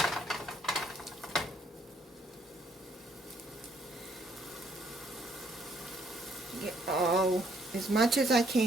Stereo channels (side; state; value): both; normal; correlation 0.67